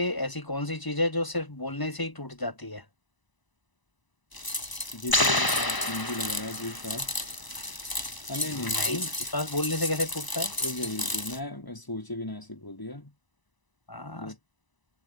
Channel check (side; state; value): right; late; 1.0 ms